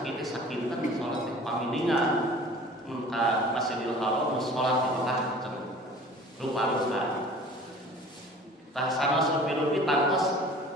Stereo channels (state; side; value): normal; both; correlation 0.45